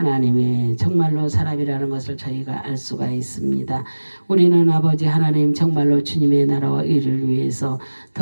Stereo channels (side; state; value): both; inverted; correlation -1.00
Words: 정말로 사람이라는 것을 저희가 알 수가 있습니다. 우리는 아버지 하나님 정말로 주님의 나라와 의를 위해서